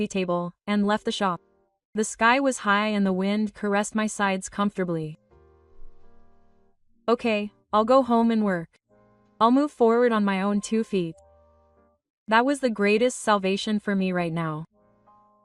table, and left the shop. The sky was high and the wind caressed my sides comfortably. Okay, I'll go home and work. I'll move forward on my own 2 feet. That was the greatest salvation for me right now.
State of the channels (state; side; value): identical; both; correlation 1.00